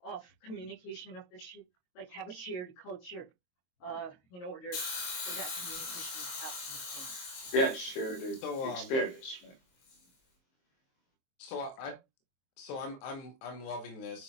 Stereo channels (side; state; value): right; late; 23 ms